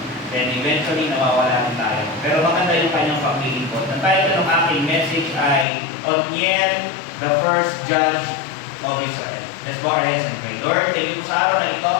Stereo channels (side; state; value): right; drops out; at 5.7 s